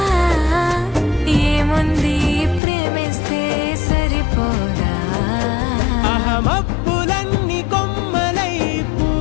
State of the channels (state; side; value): drops out; right; at 2.6 s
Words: ఏముంది ప్రేమిస్తే సరిపోదా. అహమప్పులన్నీ కొమ్మలై